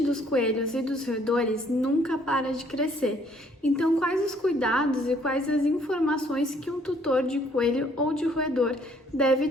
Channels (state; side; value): normal; both; correlation 0.63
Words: coelhos e dos roedores nunca para de crescer. Então, quais os cuidados e quais as informações que um tutor de coelho ou de roedor deve